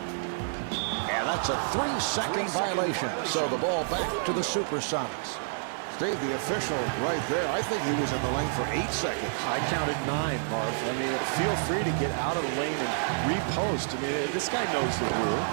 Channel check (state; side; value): silent; left; digital silence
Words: And that's a 3-second violation. So the ball back to the Supersonics. Steve, the official right there, I think he was in the lane for 8 seconds. I counted 9, Marv. I mean, feel free to get out of the lane and repost. I mean, this guy knows the rule.